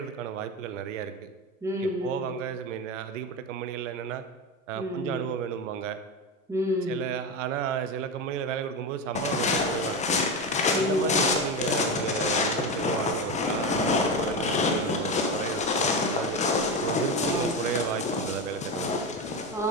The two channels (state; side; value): normal; both; correlation 0.17